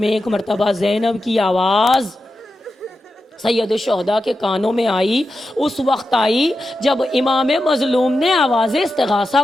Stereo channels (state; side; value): normal; both; correlation 0.90